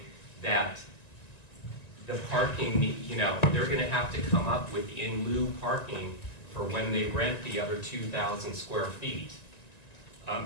that the parking, you know, they're gonna have to come up with in lieu parking for when they rent the other 2,000 square feet.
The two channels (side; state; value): right; late; 1.9 ms